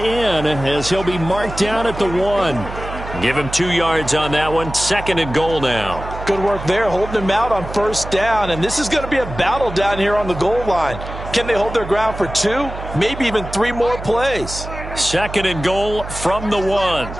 as he'll be marked down at the 1. Give him 2 yards on that one. 2nd and goal now. Good work there, holding him out on 1st down. And this is going to be a battle down here on the goal line. Can they hold their ground for 2, maybe even 3 more plays? 2nd and goal from the 1.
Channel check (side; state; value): right; noise; hum, 10 dB below the sound